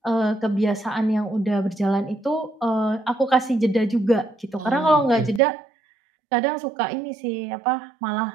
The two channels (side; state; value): left; drops out; at 5.4 s